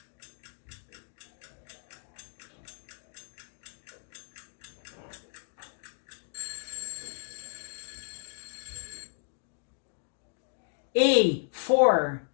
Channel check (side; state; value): right; silent; digital silence